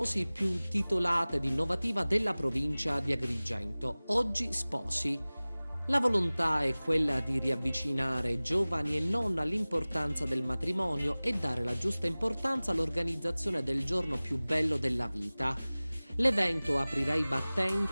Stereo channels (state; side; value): inverted; both; correlation -0.99